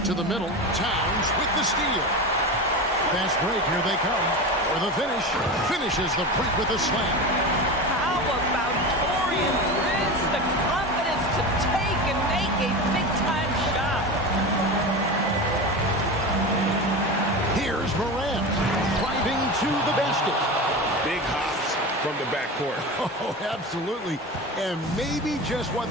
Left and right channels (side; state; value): both; normal; correlation 0.25